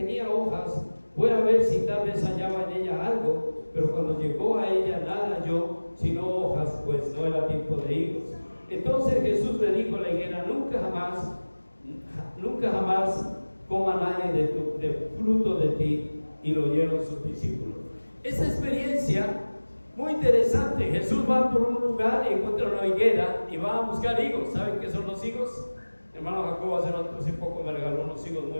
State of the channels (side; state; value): both; inverted; correlation -1.00